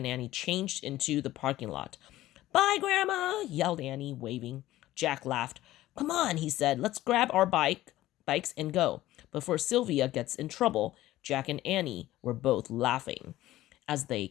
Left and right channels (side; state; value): right; quieter; 15.5 dB